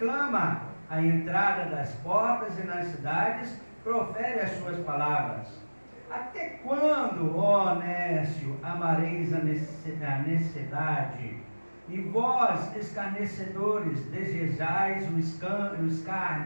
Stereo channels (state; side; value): inverted; both; correlation -1.00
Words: clama, à entrada das portas e nas cidades profere as suas palavras. Até quando, ó nécio, amareis a necessidade? E vós, escarnecedores, desejais o